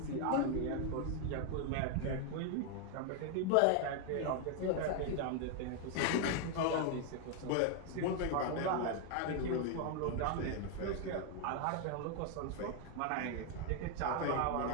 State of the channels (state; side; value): different; both; correlation 0.01